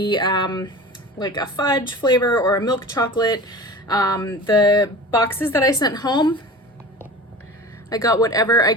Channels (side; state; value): both; normal; correlation 0.36